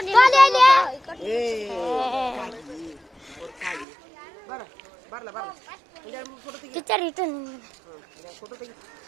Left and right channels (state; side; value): drops out; left; at 3.9 s